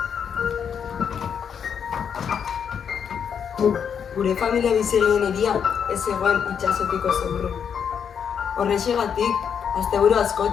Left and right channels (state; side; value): quieter; right; 7.5 dB